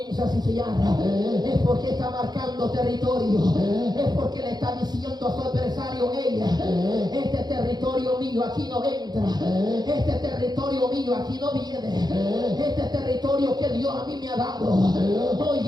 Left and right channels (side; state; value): left; late; 0.20 ms